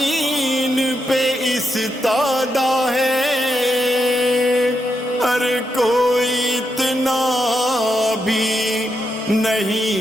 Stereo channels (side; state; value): both; normal; correlation 0.83